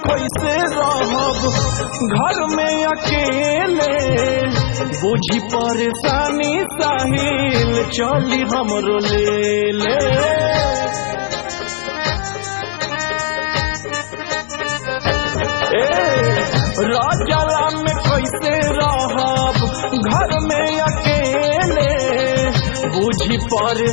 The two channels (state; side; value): silent; right; 64 dB below the other